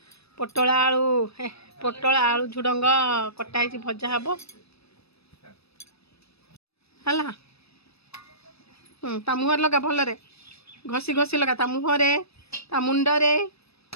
पोटल आलू झुडंग कटाई भजा हम है ता मुहर लगा भलरे घसी घसी लगा ता मुहरे ता मुंडरे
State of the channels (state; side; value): late; right; 0.78 ms